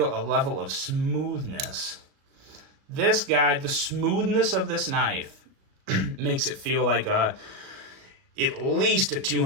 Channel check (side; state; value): left; late; 37 ms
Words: a level of smoothness. This guy, the smoothness of this knife makes it feel like at least a